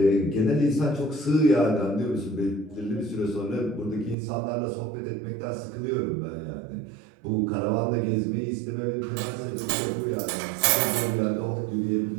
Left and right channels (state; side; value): drops out; left; at 4.2 s